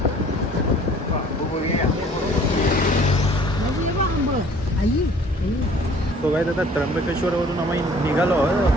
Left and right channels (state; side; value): normal; both; correlation 0.53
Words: तो काय आता त्र्यंबकेश्वरवरून आम्ही निघालो